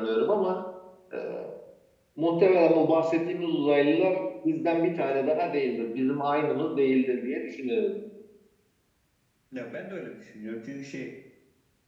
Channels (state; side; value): identical; both; correlation 1.00